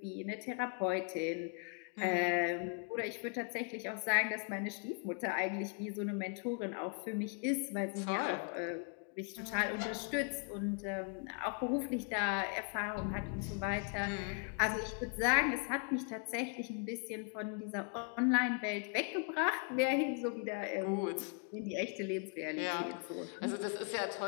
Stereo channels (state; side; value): quieter; right; 38.0 dB